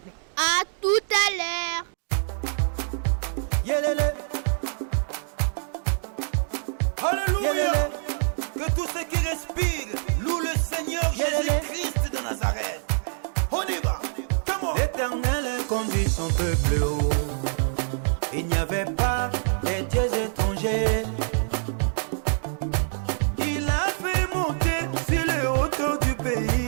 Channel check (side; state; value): left; silent; digital silence